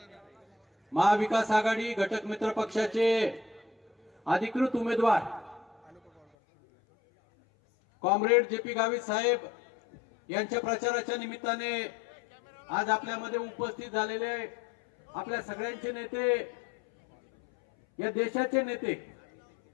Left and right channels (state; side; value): drops out; right; at 6.2 s